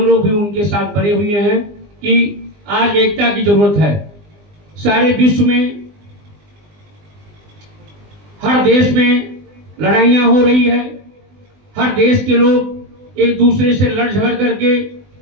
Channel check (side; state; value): left; late; 20 ms